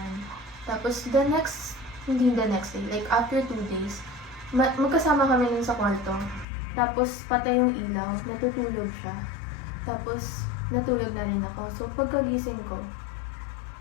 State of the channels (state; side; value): drops out; right; at 6.5 s